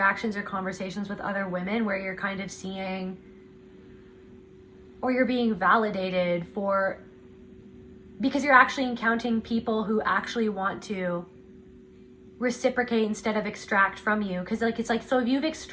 or conversations with other women where you're kind of seeing, or you're being validated because you're actually encountering people who actually want to reciprocate instead of extract from you. Because it's like, so if you've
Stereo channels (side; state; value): both; identical; correlation 1.00